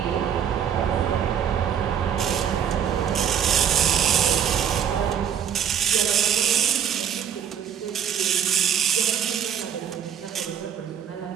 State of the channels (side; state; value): left; quieter; 8.6 dB